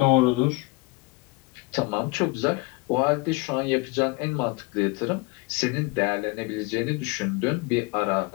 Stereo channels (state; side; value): quieter; right; 24.3 dB